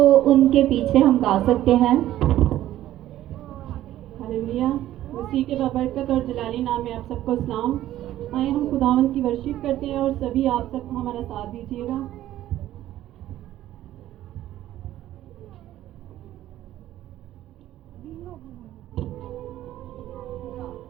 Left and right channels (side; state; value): left; quieter; 13.6 dB